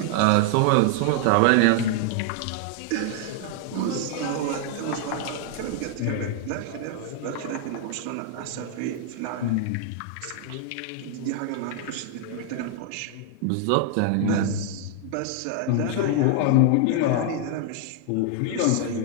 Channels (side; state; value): both; different; correlation 0.00